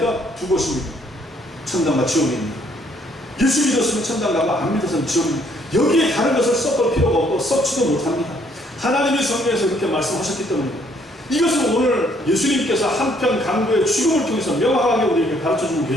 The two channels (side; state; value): both; normal; correlation 0.66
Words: 두 곳입니다. 천당과 지옥입니다. 예수 믿었으면 천당 가고 안 믿었으면 지옥입니다. 여기에 다른 것을 섞을 필요가 없고 섞지도 못합니다. 하나님이 성경에서 그렇게 말씀하셨기 때문입니다. 이것은 오늘 예수님께서 한편 강도의 죽음을 통해서 명확하게 우리에게 가르쳐주고